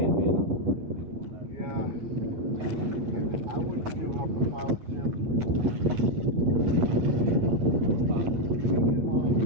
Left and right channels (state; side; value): late; left; 9.5 ms